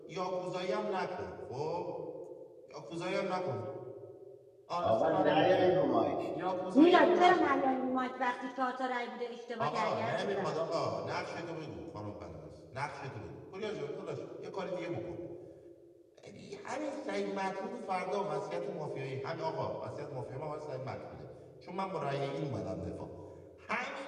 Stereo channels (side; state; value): both; identical; correlation 1.00